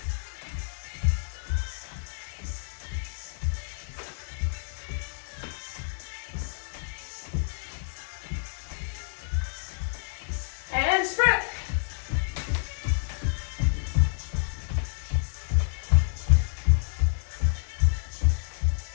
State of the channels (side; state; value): right; silent; digital silence